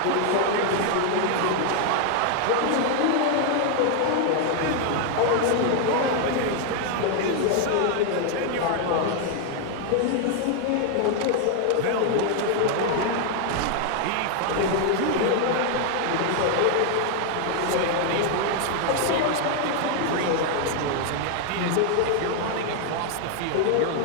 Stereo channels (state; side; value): different; both; correlation 0.00